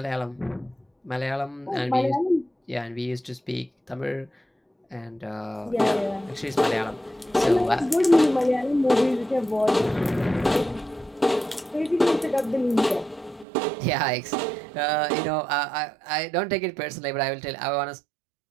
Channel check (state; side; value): drops out; left; at 13.5 s